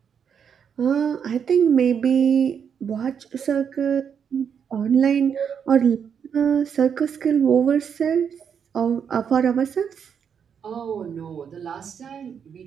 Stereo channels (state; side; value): quieter; left; 7.4 dB